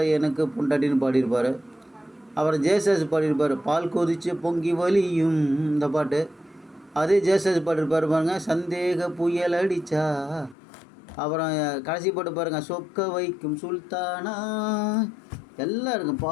எனக்கு பொண்டாட்டின்னு பாடியிருப்பார். அப்புறம் ஜேசஸ் பாடியிருப்பார். பால் கொதிச்சு பொங்கி வலியும், இந்த பாட்டு. அதே ஜேசஸ் பாடியிருப்பார் பாருங்கள். சந்தேக புயல் அடிச்சா. அப்புறம் கடைசி பாட்டு பாருங்கள், சொக்க வைக்கும் சுல்தானா. எல்லாம் இருக்கும்.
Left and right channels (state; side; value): drops out; right; at 10.6 s